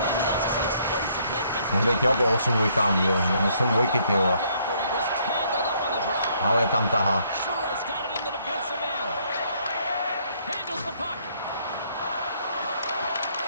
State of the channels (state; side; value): inverted; both; correlation -0.67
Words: that's just an explosive hit. Gets Může jít jo po 8 dvojkám, jo. 8 dvojky, ty vole. after he was tangled up on the draw. Ale tam tahá. Suarez got it in the defensive end. Handles the puck.